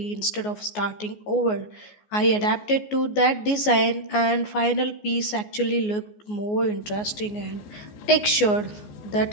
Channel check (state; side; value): late; right; 14 ms